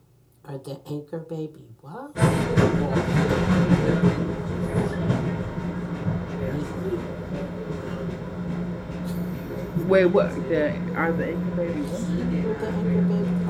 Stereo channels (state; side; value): identical; both; correlation 1.00